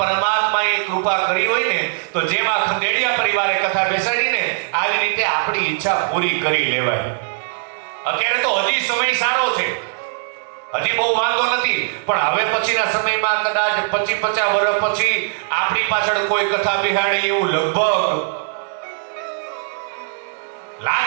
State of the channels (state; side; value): silent; left; 66 dB below the other